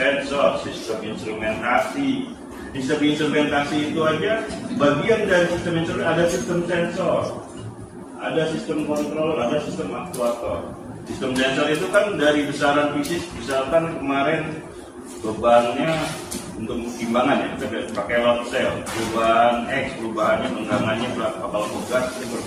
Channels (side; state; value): both; identical; correlation 1.00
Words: sistem instrumentasi. Sistem instrumentasi itu aja bagian dari sistem instrumentasi, ada sistem sensor, ada sistem kontrol, ada sistem aktuator. Sistem sensor itu kan dari besaran fisik, misalkan kemarin bebannya untuk timbangan ya, kita pakai load cell, perubahan X, perubahannya penggangannya berapa, kalau gas